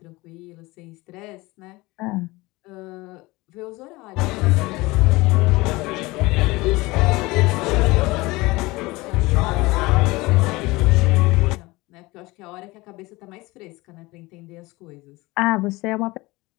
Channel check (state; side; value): quieter; right; 21.8 dB